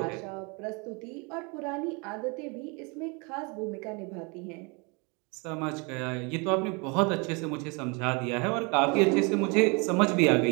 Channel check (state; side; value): quieter; left; 30.9 dB